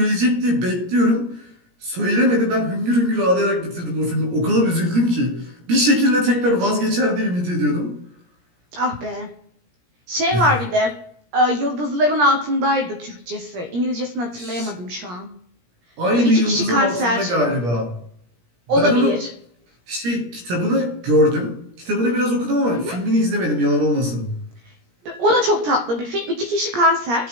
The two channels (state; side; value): late; left; 17 ms